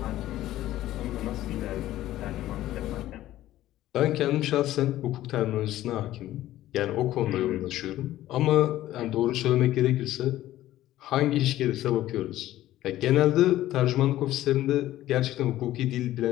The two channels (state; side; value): quieter; right; 14.4 dB